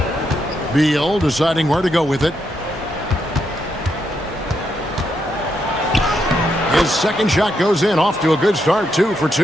Beal deciding where to go with it. His second shot goes in, off to a good start, 2 for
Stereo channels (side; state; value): both; normal; correlation 0.80